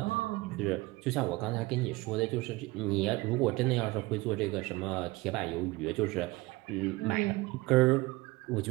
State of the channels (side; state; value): left; quieter; 21.6 dB